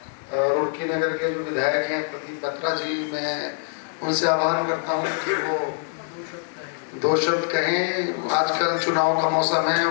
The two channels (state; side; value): silent; right; 62 dB below the other